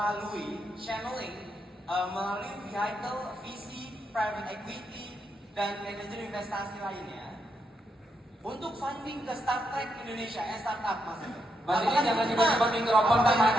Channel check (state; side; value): normal; both; correlation 0.81